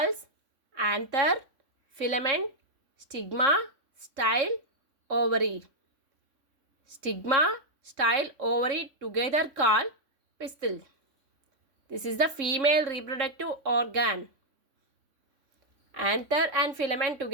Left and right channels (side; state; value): left; late; 3.5 ms